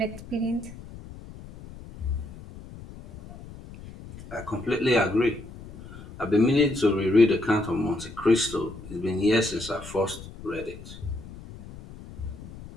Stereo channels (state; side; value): noise; left; rumble, 15 dB below the sound